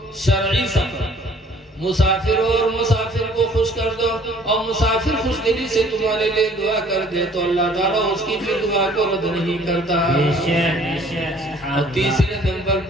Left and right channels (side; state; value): both; normal; correlation 0.55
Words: شرعی سفر، مسافر ہو اور مسافر کو خوش کر دو، اور مسافر خوش دلی سے تمہارے لیے دعا کر دے تو اللہ تعالیٰ اس کی بھی دعا کو رد نہیں کرتا۔ بے شک بے شک سبحان اور اللہ۔ تیسرے نمبر